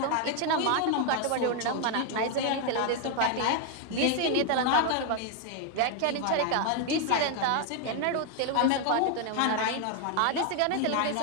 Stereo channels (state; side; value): different; both; correlation 0.00